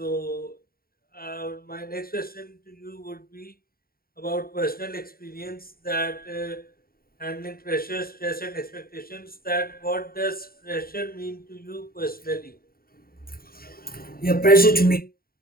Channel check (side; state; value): right; late; 0.43 ms